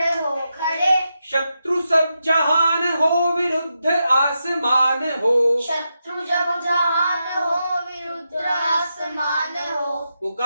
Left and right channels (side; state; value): both; inverted; correlation -0.86